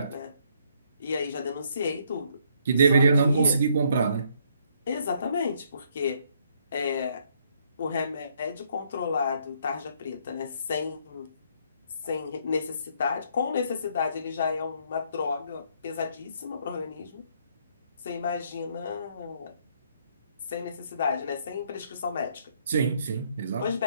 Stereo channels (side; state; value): both; inverted; correlation -0.69